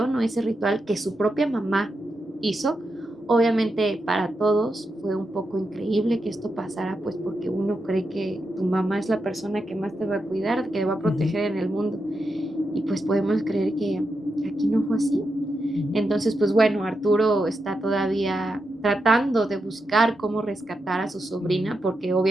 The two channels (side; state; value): both; normal; correlation 0.86